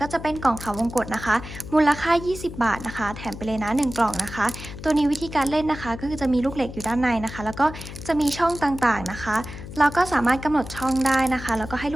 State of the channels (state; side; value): noise; left; hum, 12 dB below the sound